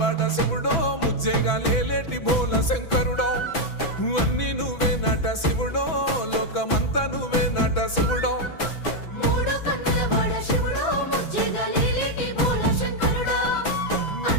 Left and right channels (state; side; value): late; right; 6.0 ms